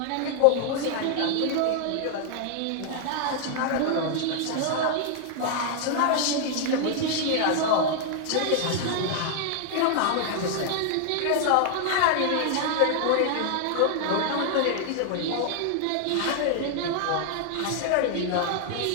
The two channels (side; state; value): both; different; correlation 0.00